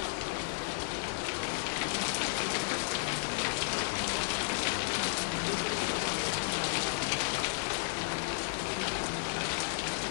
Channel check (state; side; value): silent; right; digital silence